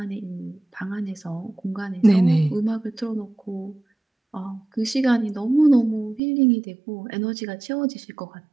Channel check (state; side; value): drops out; left; at 6.2 s